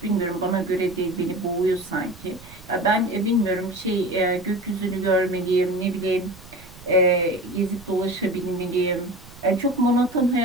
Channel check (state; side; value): noise; right; rumble, 21 dB below the sound